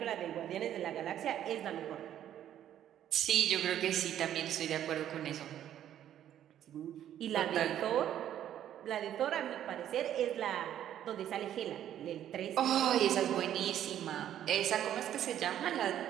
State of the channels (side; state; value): left; quieter; 11.0 dB